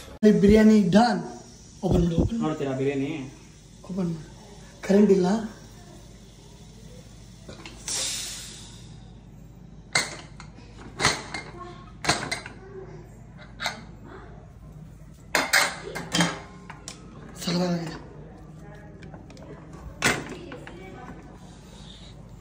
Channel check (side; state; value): both; identical; correlation 1.00